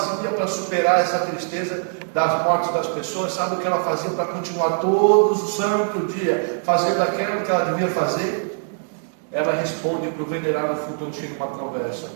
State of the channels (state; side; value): silent; left; digital silence